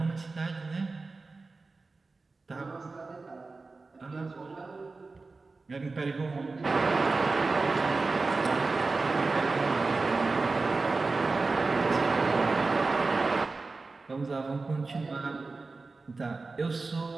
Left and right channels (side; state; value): left; quieter; 3.8 dB